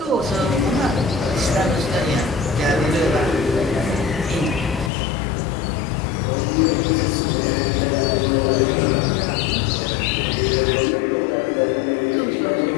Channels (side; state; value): right; drops out; at 4.9 s